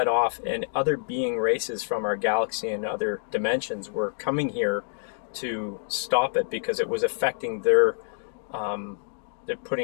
off, and other being races from our galaxy and other dimensions were coming here to stop it because it was affecting they're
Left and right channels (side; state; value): right; silent; digital silence